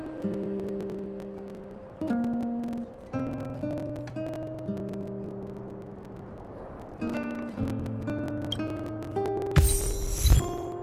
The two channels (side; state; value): both; identical; correlation 1.00